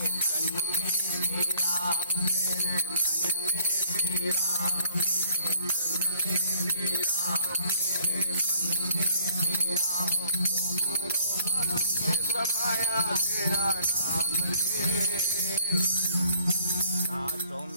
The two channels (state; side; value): inverted; both; correlation -0.61